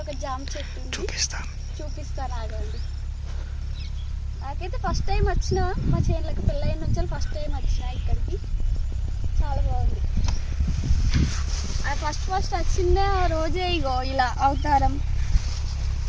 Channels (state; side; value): identical; both; correlation 1.00